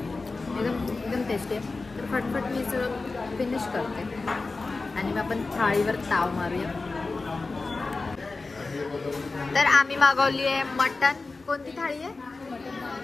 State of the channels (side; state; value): right; quieter; 3.7 dB